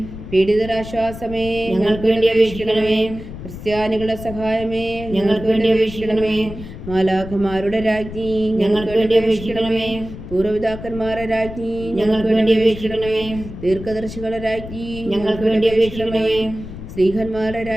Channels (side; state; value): left; noise; rumble, 12 dB below the sound